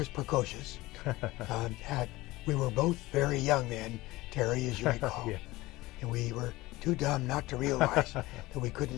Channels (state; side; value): quieter; right; 19.4 dB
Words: precocious. We were both very young then, Terry, as you recall. Yeah. And we were too dumb not to realize that we